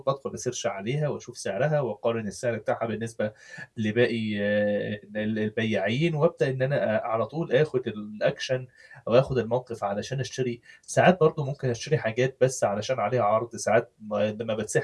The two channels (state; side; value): identical; both; correlation 1.00